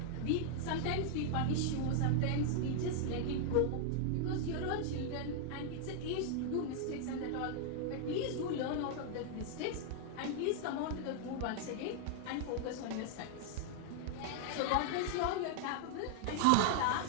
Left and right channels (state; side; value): different; both; correlation 0.00